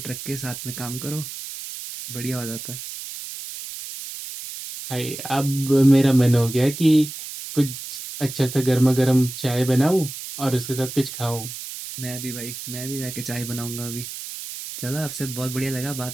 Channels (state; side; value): noise; right; hiss, 9 dB below the sound